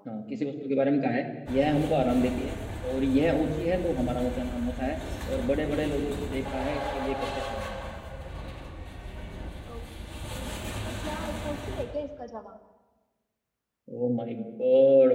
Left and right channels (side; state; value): both; identical; correlation 1.00